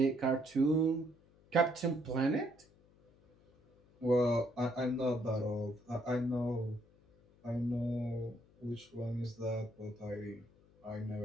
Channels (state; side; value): noise; left; hum, 29 dB below the sound